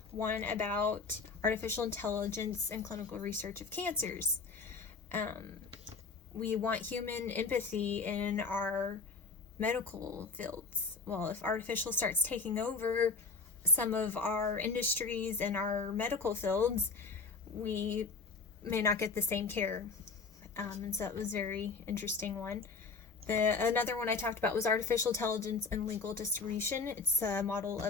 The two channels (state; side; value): quieter; right; 4.4 dB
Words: one about artificial intelligence and clinical research of cancers. We want human empathy in our medical fields. Well, if artificial starts taking over some of our industries and our medical fields, we may not get the same care. And so it was a very interesting one. Another one I talked about was artificial intelligence and legal distribution. It's a model